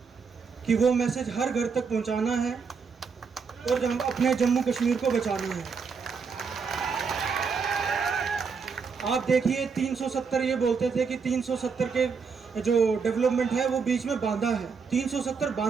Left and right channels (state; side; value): quieter; left; 5.5 dB